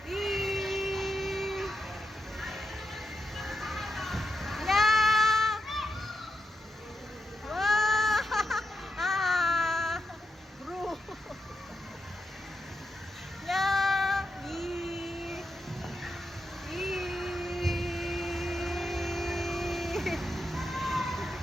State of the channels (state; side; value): normal; both; correlation 0.87